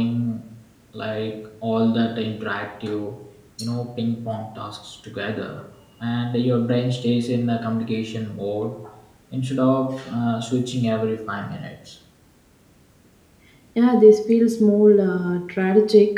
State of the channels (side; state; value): both; identical; correlation 1.00